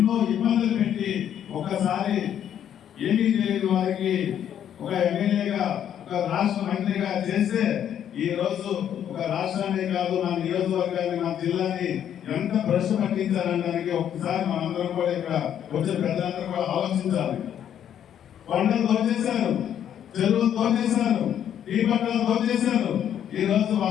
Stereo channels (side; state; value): right; quieter; 9.7 dB